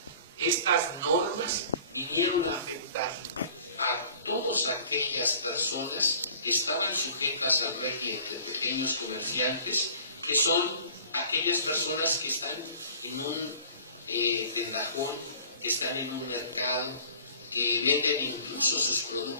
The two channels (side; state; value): both; inverted; correlation -0.48